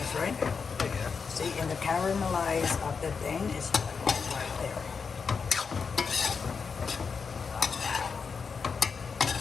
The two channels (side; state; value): right; quieter; 5.5 dB